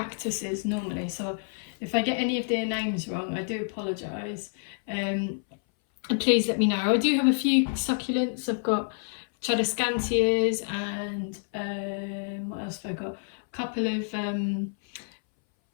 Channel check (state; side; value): silent; right; 59 dB below the other